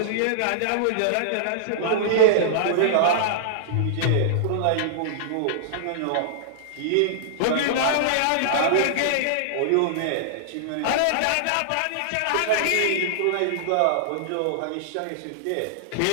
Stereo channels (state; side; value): different; both; correlation -0.01